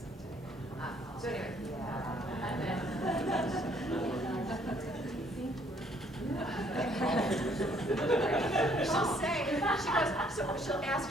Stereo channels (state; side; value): normal; both; correlation 0.64